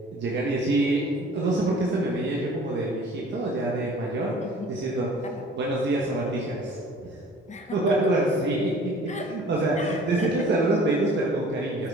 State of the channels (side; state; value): both; normal; correlation 0.49